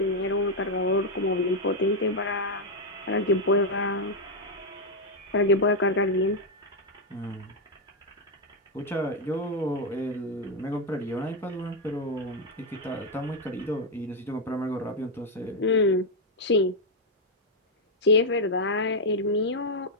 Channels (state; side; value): normal; both; correlation 0.00